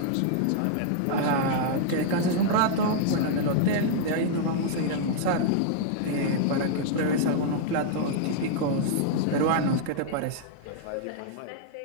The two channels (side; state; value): both; different; correlation -0.01